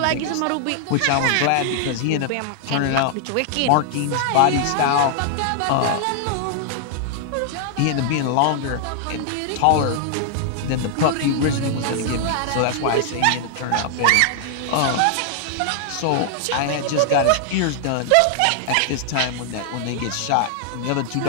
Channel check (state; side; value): different; both; correlation 0.00